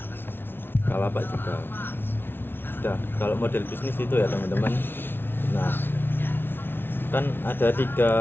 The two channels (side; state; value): right; late; 0.11 ms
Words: Bukalapak juga. Udah, kalau model bisnis itu ya teman-teman. Nah, kan ada